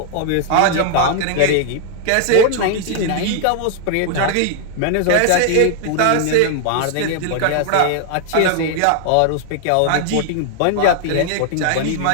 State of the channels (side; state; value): both; different; correlation 0.00